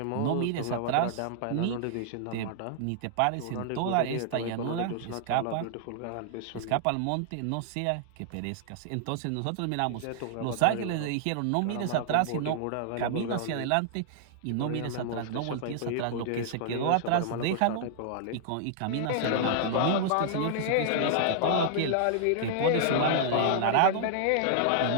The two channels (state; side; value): different; both; correlation -0.01